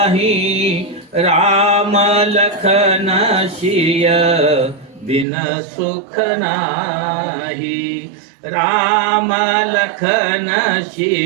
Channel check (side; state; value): left; drops out; at 5.2 s